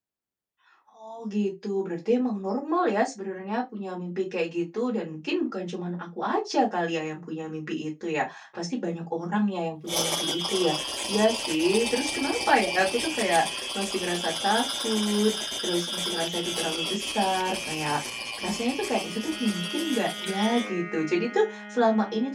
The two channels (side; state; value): both; identical; correlation 1.00